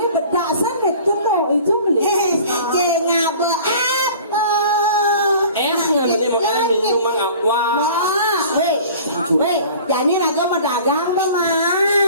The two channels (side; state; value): both; inverted; correlation -0.45